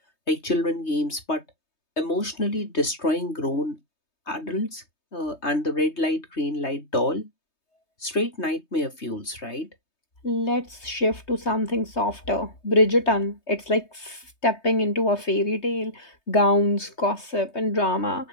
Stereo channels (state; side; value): late; right; 3.2 ms